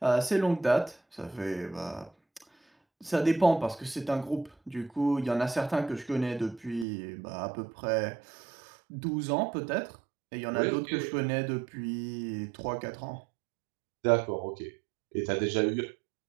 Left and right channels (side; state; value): left; drops out; at 6.9 s